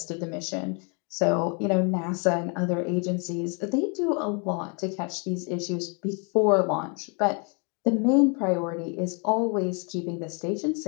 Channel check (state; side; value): quieter; right; 36.1 dB